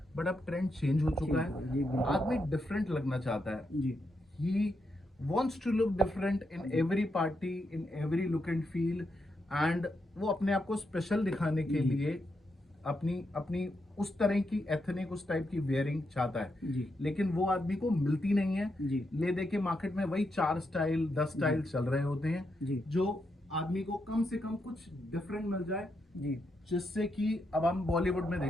बट अब ट्रेंड चेंज हो चुका है, आदमी डिफरेंट लगना चाहता है। ही wants to look different in every party, in every look and feel, and वो अपने आप को स्पेशल दिखाने के लिए अपनी उस तरह की एथनिक, उस टाइप की वेयरिंग चाहता है। लेकिन वो आदमी को मिलती नहीं है। ले दे के मार्केट में वही 4 स्टाइल 10 स्टाइल चल रहे होते हैं, जो आदमी को कम से कम कुछ डिफरेंट मिल जाए। जिससे कि अब हम बॉलीवुड में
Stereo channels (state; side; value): normal; both; correlation 0.83